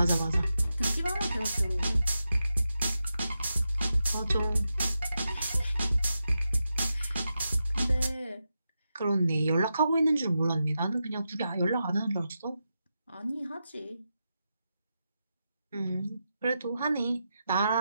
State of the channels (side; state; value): both; inverted; correlation -0.88